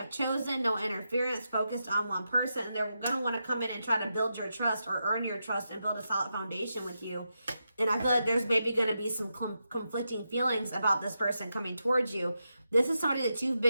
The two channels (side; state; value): both; inverted; correlation -0.87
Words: chosen no interference, focused on one person. And they're going to want to come in and try to build your trust or earn your trust and build a solid foundation with you. And I feel like there's maybe going to be some conflicting feelings about this person coming towards you. This is somebody that you've